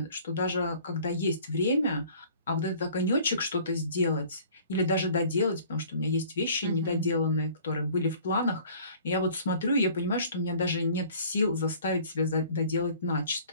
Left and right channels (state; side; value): inverted; both; correlation -0.51